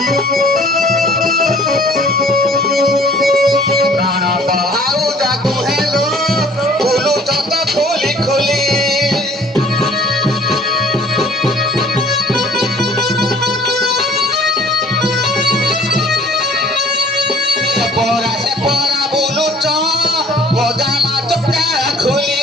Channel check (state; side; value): normal; both; correlation 0.53